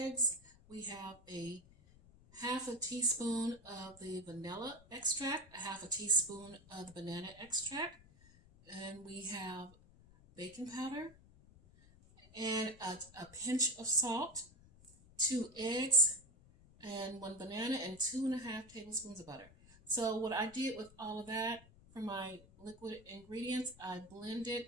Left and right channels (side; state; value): left; noise; rumble, 24 dB below the sound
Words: We have a 1/2 teaspoon of the vanilla extract, 1/2 teaspoon of the banana extract, and we have baking powder and a pinch of salt, 2 eggs, and 1 banana, and 2.5 tablespoons of butter. So what I did with all of that for my liquid ingredients, I blended